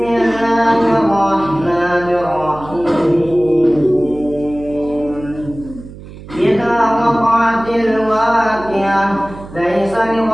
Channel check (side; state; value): right; noise; hum, 16 dB below the sound